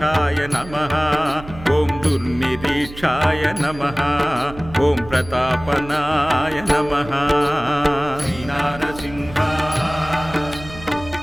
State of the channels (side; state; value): right; noise; hum, 15 dB below the sound